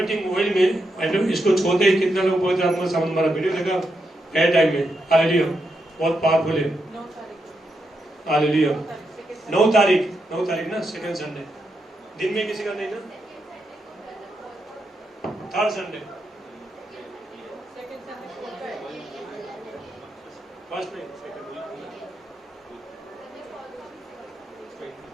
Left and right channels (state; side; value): normal; both; correlation 0.84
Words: ऑयल में इसको छोड़ते ही कितना लोग बहुत आत्मा समझ, हमारा वीडियो देखा है टाइम में। हालेलुया। बहुत पावरफुल है। हालेलुया। 9 तारीख ना, 2nd संडे। दिन में किसी का नहीं ना? 3rd Sunday. फर्स्ट नहीं,